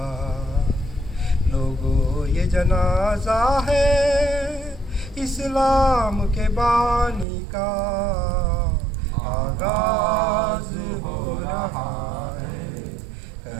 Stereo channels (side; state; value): left; drops out; at 7.2 s